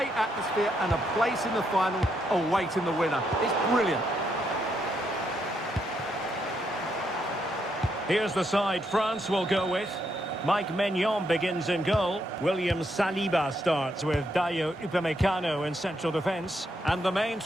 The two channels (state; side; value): normal; both; correlation 0.78